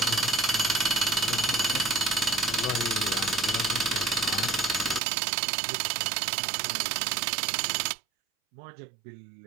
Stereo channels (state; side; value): drops out; left; at 5.0 s